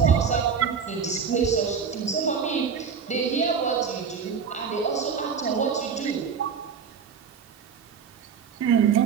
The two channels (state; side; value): quieter; left; 6.5 dB